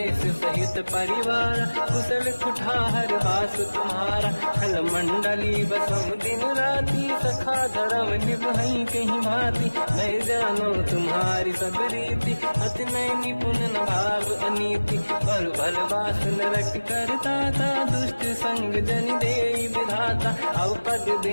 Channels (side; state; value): both; inverted; correlation -1.00